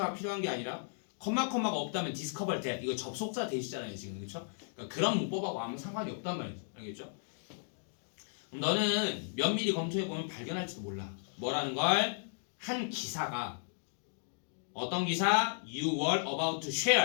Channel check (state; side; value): silent; right; digital silence